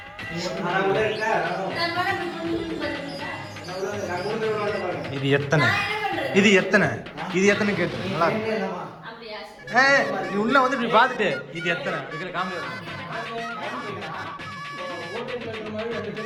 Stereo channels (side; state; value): both; identical; correlation 1.00